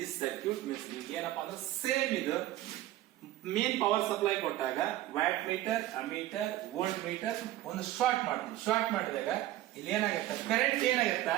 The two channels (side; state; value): left; quieter; 14.9 dB